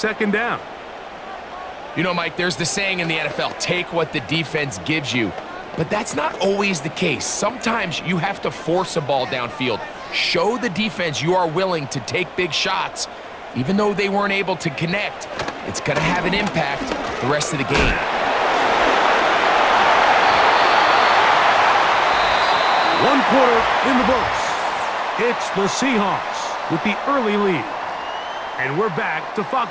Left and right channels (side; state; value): both; identical; correlation 1.00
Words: 2nd down. You know, Mike, there's the saying in the NFL, take what the defense gives you. But that's not always the case. Sometimes you have to force a ball downfield. Show the defense you are willing to take big shots. Even though they weren't able to connect, it's going to have an impact the rest of the game. One quarter in the books. It's the Seahawks with the early lead. And we're back to